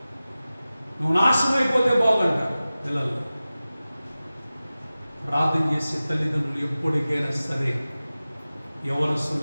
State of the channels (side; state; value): both; inverted; correlation -0.96